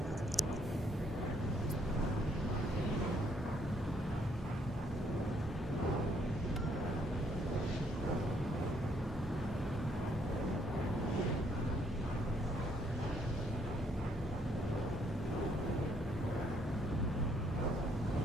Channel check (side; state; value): both; normal; correlation 0.69